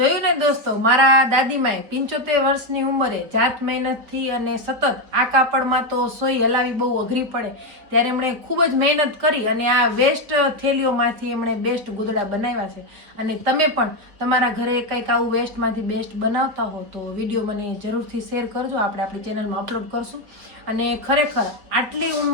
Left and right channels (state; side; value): late; left; 4.6 ms